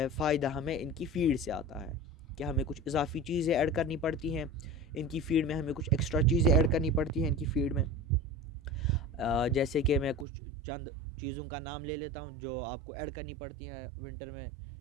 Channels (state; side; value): drops out; left; at 10.2 s